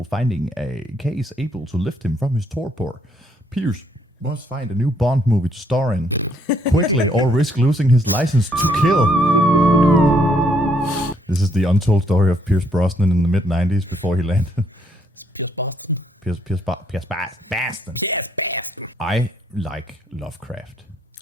finding a case able to lift him from his torpor. Pierce must find a new Bond movie to star in quickly or risk losing his license to kill. This is the untold story of Pierce Brosnan in the mid-90s before he landed. Pierce Brosnan. I like Lovecraft.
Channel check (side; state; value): both; normal; correlation 0.70